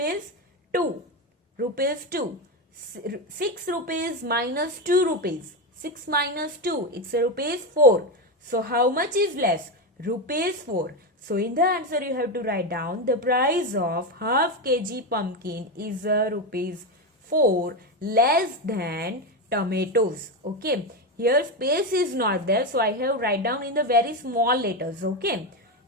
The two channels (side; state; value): both; normal; correlation 0.12